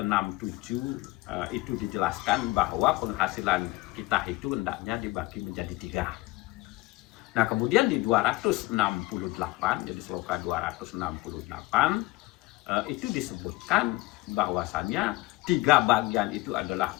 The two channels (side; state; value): right; quieter; 20.4 dB